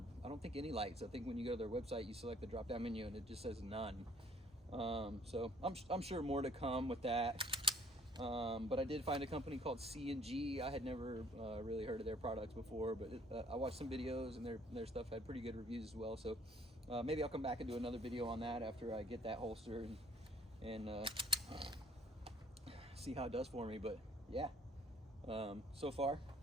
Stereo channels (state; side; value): normal; both; correlation 0.60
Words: I don't think any lights. I think when you go to their website, you select the drop-down menu and it just says none. So I'm sure more to come with that. But I did find a company called C&G. I had never really heard of their products before, but I watched some videos, and their stuff had pretty good reviews as well. So maybe I'll come back and do another video on that after I get that holster and see how it does for me. But yeah, so far